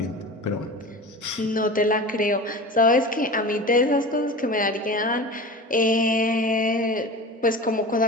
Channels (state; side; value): normal; both; correlation 0.33